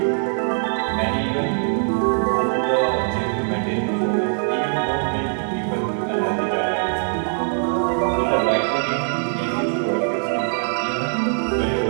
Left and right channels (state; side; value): silent; left; digital silence